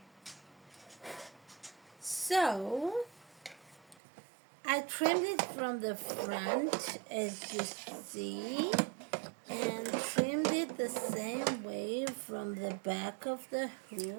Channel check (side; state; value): left; drops out; at 4.0 s